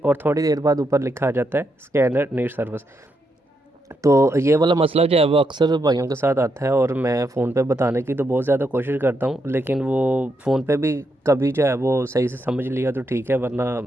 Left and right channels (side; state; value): both; normal; correlation 0.81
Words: थोड़ी देर बाद ऊपर लिखा आ जाता है स्कैनर नीड सर्विस। तो ये वाला मसला जो है वो अक्सर भाइयों के साथ आता है, और मैं फ़ोन पे बताने की तो बहुत ज़्यादा कोशिश करता हूँ, लेकिन वो फ़ोन पे भी कभी जो है वो सही से समझ लिया तो ठीक है, वरना